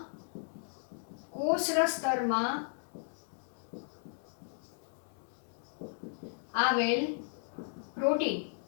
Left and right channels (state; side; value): silent; right; 54 dB below the other